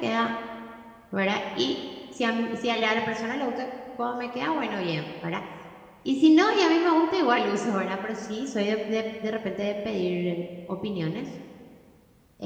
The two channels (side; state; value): both; identical; correlation 1.00